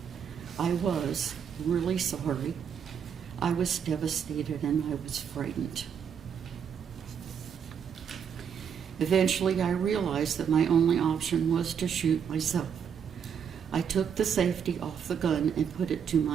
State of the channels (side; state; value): left; quieter; 7.6 dB